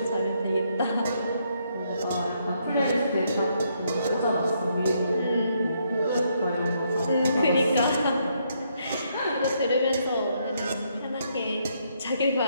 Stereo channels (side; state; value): both; inverted; correlation -0.74